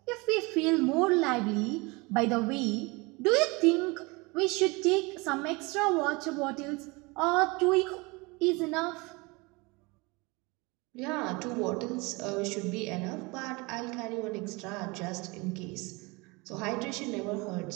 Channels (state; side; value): quieter; left; 25.9 dB